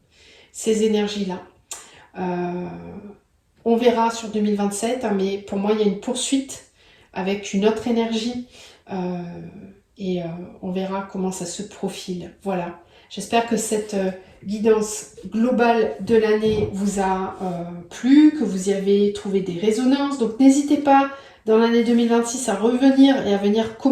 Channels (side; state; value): both; identical; correlation 1.00